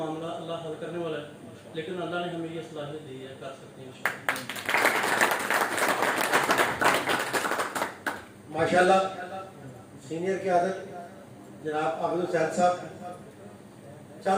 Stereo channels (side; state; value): both; identical; correlation 1.00